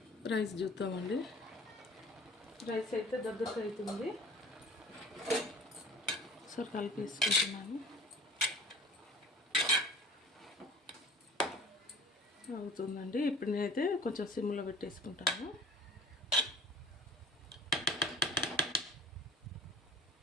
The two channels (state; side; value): normal; both; correlation 0.44